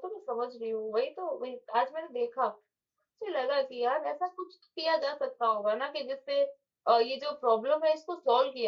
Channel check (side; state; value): both; identical; correlation 1.00